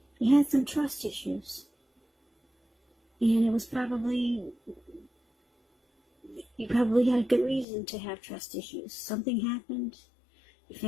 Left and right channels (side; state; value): right; drops out; at 7.7 s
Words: you had some trust issues. And it was you probably had a good reason to have trust issues. Something happened. You